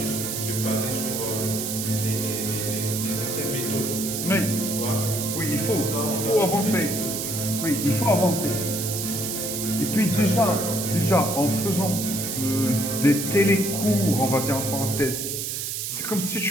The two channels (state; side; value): noise; right; hiss, 3 dB below the sound